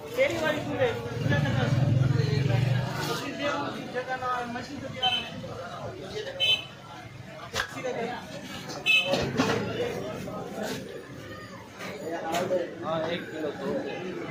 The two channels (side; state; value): both; identical; correlation 1.00